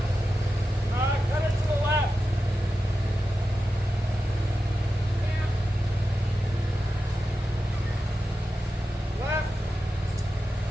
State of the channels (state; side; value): normal; both; correlation 0.91